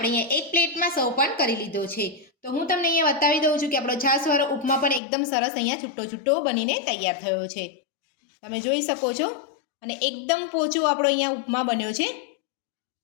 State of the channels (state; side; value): drops out; right; at 5.0 s